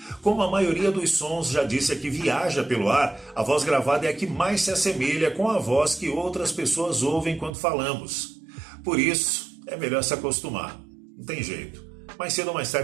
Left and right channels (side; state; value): left; drops out; at 7.5 s